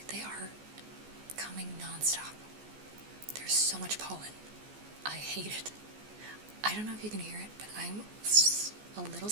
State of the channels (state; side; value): late; left; 14 ms